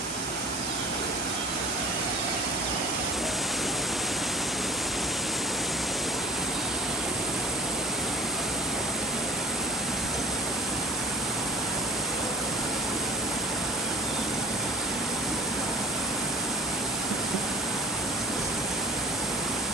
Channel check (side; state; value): both; normal; correlation 0.41